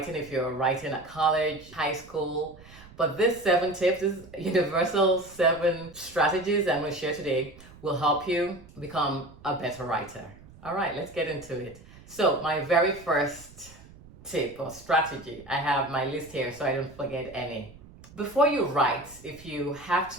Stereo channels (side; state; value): right; noise; rumble, 21 dB below the sound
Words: if you're writing at college, high school. But this 7 tips, this universal 7 strategies I'm going to share today will help you become a better writer. All right, let's get into it. So my very first tip or strategy, I have my list here so I don't forget any. Before you write, if you have